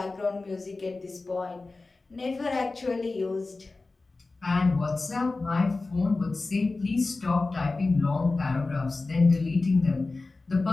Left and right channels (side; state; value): right; quieter; 3.5 dB